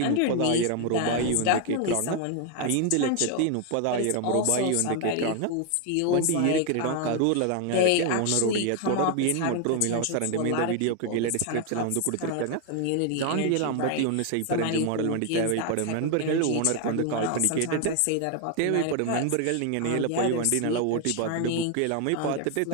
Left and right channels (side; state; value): both; different; correlation 0.01